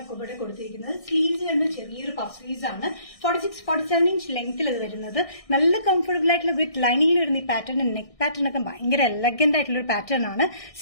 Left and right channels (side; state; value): right; late; 1.6 ms